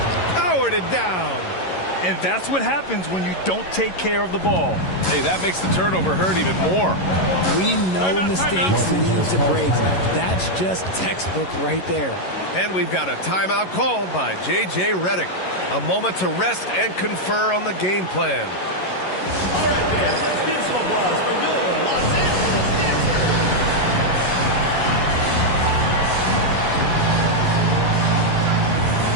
powered it down. And that's what happens when you don't take care of the ball. Hey, that makes the turnover hurt even more. We know mistakes lead to breaks. That's just textbook right there. And we've got a timeout called by J.J. Redick. A moment to rest and confer on the game plan. All right, fans, let's give some applause for your Los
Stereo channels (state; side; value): late; right; 11 ms